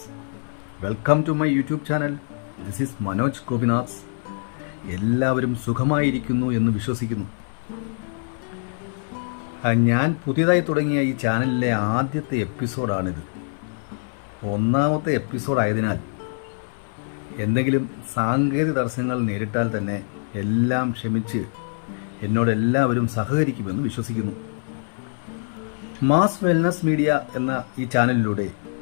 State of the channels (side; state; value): right; silent; 63 dB below the other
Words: welcome to my YouTube channel. This is Manoj Gopinath. എല്ലാവരും സുഖമായിരിക്കുന്നു എന്ന് വിശ്വസിക്കുന്നു. ഞാൻ പുതിയതായി തുടങ്ങിയ ഈ ചാനലിലെ ആദ്യത്തെ എപ്പിസോഡാണിത്. ഒന്നാമത്തെ എപ്പിസോഡായതിനാൽ എന്തെങ്കിലും സാങ്കേതിക തടസ്സങ്ങൾ നേരിട്ടാൽ തന്നെ എല്ലാം ക്ഷമിച്ച് എന്നോട് എല്ലാവരും സഹകരിക്കുമെന്ന് വിശ്വസിക്കുന്നു. മാസ് വെൽനസ് മീഡിയ എന്ന ഈ ചാനലിലൂടെ